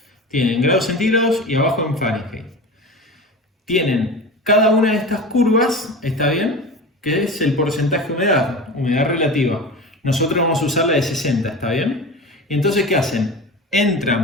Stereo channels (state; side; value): normal; both; correlation 0.30